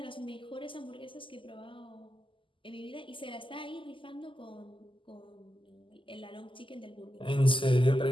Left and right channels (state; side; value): late; right; 0.25 ms